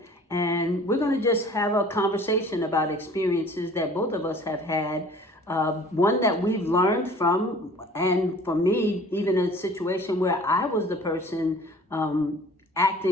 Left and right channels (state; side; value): normal; both; correlation 0.48